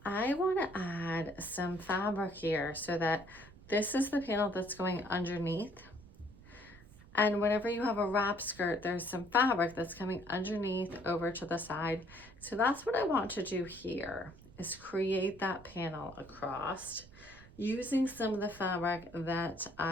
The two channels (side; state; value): right; noise; rumble, 21 dB below the sound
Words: I want to add some fabric here, so that this is the panel that's going underneath. And whenever you have a wrap skirt, there's some fabric that's coming underneath over to the side. So that's what I want to do here, is create that panel across using some of the fabric that